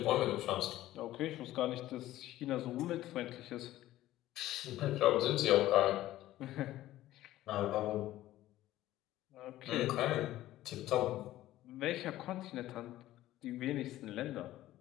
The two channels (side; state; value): right; quieter; 14.9 dB